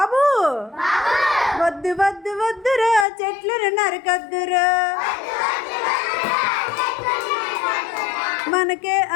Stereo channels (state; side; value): drops out; right; at 3.1 s